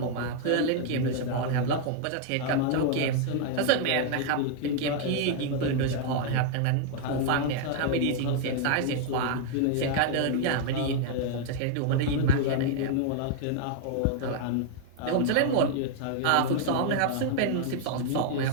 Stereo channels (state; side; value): different; both; correlation 0.00